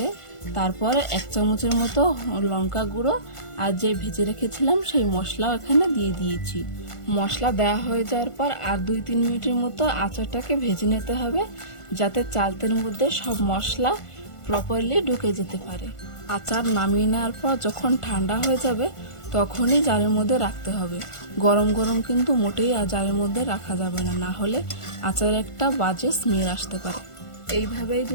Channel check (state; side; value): late; right; 1.5 ms